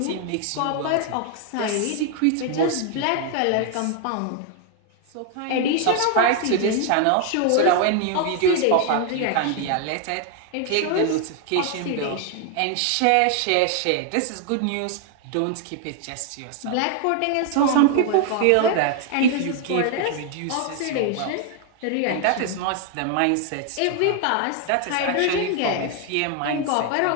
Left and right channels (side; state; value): both; different; correlation 0.00